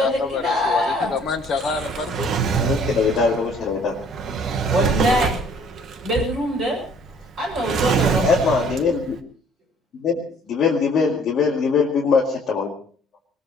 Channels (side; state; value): both; normal; correlation 0.57